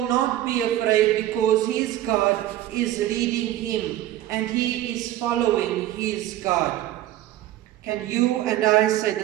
not be afraid because his God is leading him and he is following his God. Can you and I say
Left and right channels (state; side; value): quieter; left; 13.7 dB